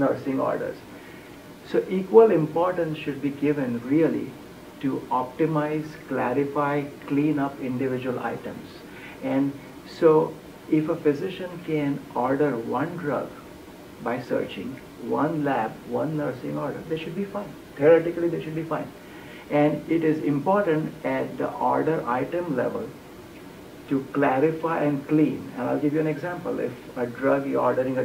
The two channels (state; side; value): identical; both; correlation 1.00